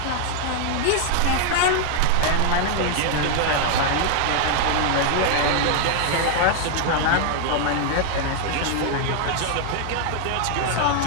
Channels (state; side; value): different; both; correlation 0.00